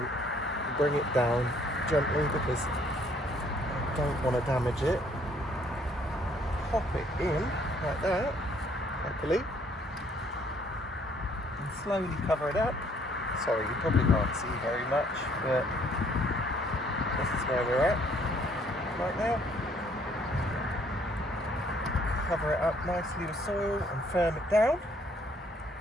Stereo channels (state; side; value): normal; both; correlation 0.63